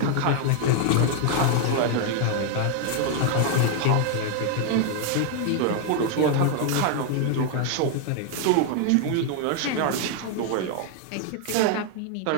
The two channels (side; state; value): both; different; correlation 0.00